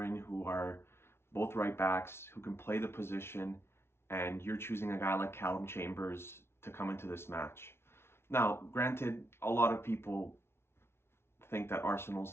who are both right backs who can play the position, and you're choosing a guy like Callum Chambers to come into this match. Now, granted, a lot of people think that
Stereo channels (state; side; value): late; right; 0.12 ms